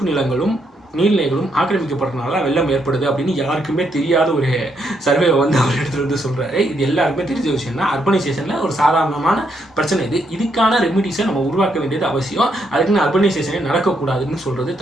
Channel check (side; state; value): both; normal; correlation 0.76